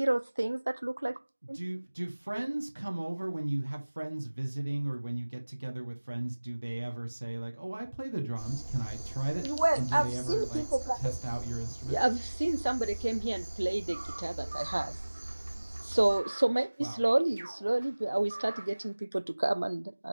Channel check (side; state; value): both; inverted; correlation -1.00